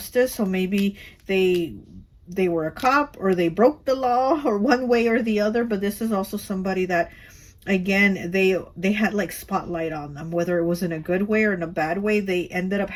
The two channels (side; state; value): both; identical; correlation 1.00